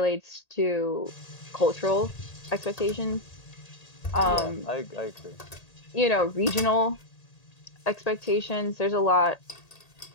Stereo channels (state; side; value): late; right; 1.8 ms